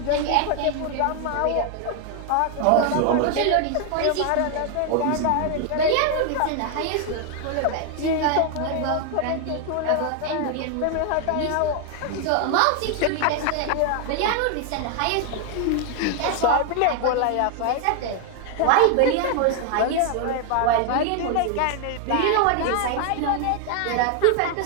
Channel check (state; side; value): different; both; correlation 0.00